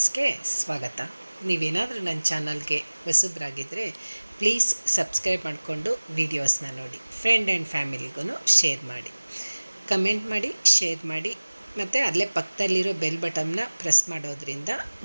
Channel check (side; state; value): both; inverted; correlation -1.00